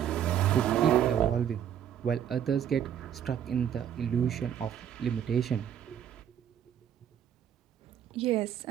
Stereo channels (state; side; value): quieter; left; 9.5 dB